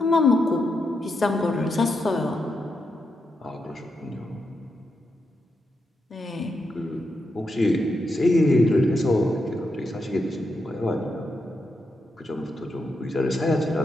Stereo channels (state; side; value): normal; both; correlation 0.84